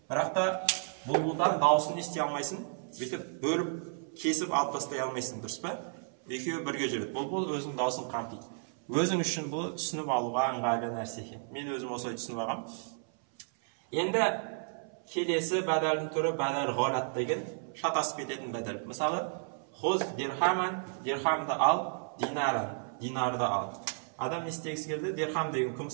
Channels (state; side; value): silent; left; 56 dB below the other